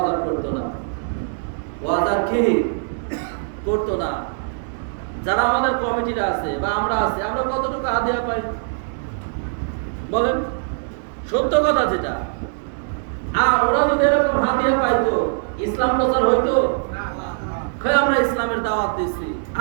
করতো না, ওয়াজ আর কি করতো না। যারা আমাদের কমিটিরা আছে বা আমরা আছি, আমরা কতটুকু হাদিয়া পাই বলেন? সত্য কথা যেটা। আর ওরা যদি এরকম হাদিয়া পাইতো, ইসলাম প্রচার হইতো? আমরা ইসলামের দাওয়াত দিচ্ছি,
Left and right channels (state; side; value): silent; left; digital silence